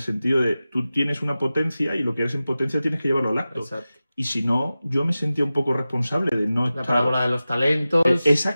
de tú tienes una potencia y lo que eres en potencia tienes que llevarlo al acto. Exacto. Y si no, yo me sentía un poco responsable de no estar... La parábola de los talentos.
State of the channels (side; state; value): both; inverted; correlation -0.95